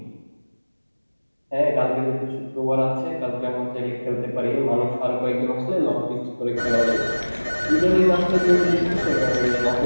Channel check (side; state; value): both; inverted; correlation -1.00